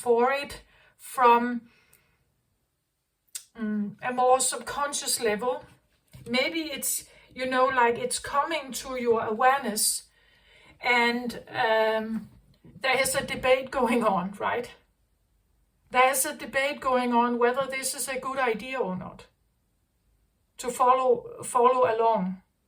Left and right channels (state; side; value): identical; both; correlation 1.00